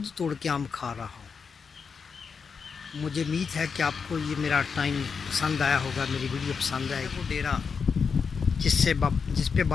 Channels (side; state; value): right; quieter; 5.7 dB